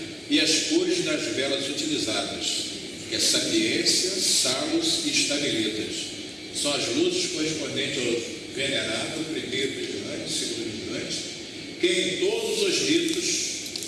e as cores das velas utilizadas, que é sapiência, salos e estamelitas. São as luzes correspondentes ao venerável, primeiro vigilante, segundo vigilante, que em todos os ritos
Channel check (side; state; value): both; identical; correlation 1.00